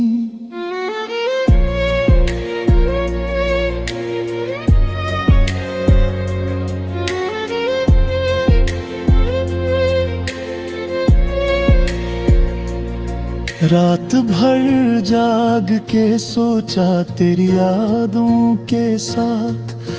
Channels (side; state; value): both; identical; correlation 1.00